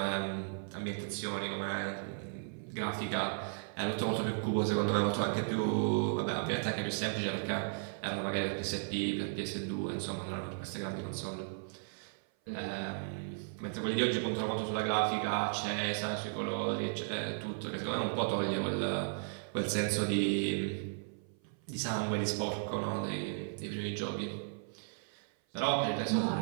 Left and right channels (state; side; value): silent; left; 54 dB below the other